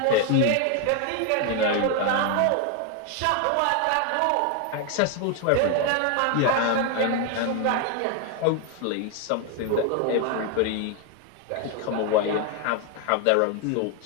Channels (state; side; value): different; both; correlation 0.01